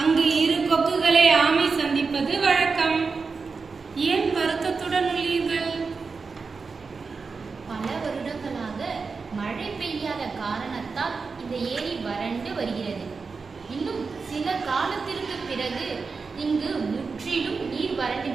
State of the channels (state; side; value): quieter; left; 4.7 dB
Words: அங்கு இரு கொக்குகளை ஆமை சந்திப்பது வழக்கம். ஏன் வருத்தத்துடன் உள்ளீர்கள்? பல வருடங்களாக மழை பெய்யாத காரணத்தால் இந்த ஏரி வறண்டு வருகிறது. இன்னும் சில காலத்திற்கு பிறகு இங்கு முற்றிலும் நீர்